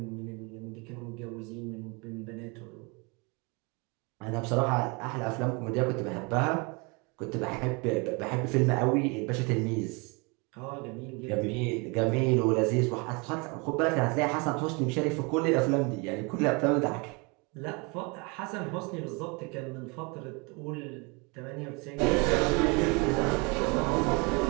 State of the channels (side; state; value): left; quieter; 29.9 dB